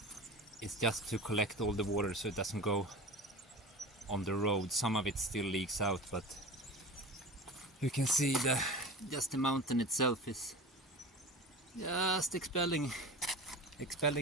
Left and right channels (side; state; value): both; normal; correlation 0.33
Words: It's just to collect all the water so it doesn't go on the road. Some of it still leaks out, but you can see just the mountain itself is just expelling